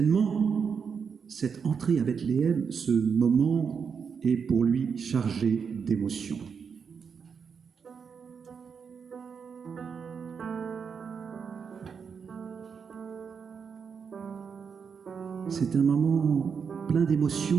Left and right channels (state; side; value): quieter; left; 6.3 dB